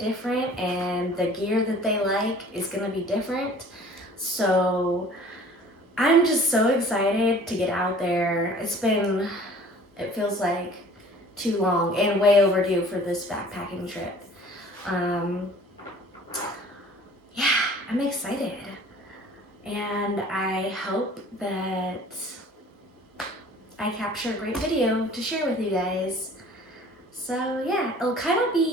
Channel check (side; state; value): both; normal; correlation 0.49